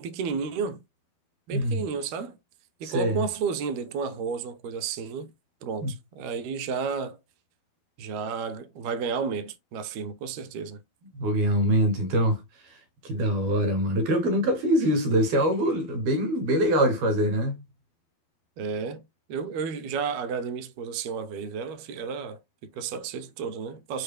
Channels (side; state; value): left; late; 12 ms